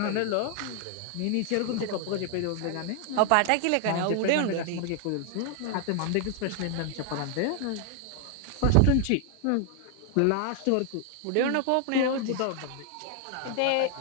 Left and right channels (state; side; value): different; both; correlation 0.00